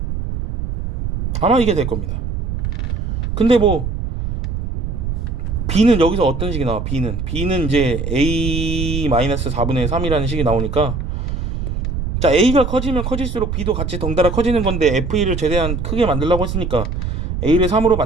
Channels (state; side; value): noise; right; rumble, 3 dB below the sound